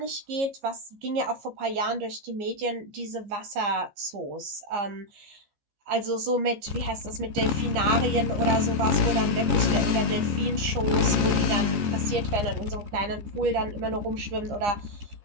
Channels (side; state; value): left; late; 15 ms